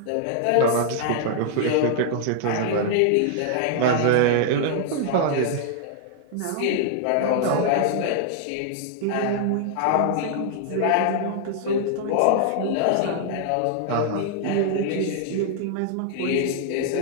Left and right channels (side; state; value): both; different; correlation -0.01